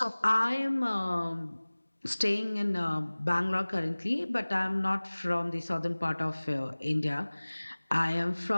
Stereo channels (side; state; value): both; inverted; correlation -1.00